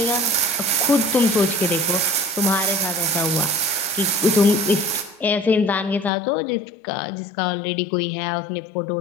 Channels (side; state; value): right; drops out; at 6.1 s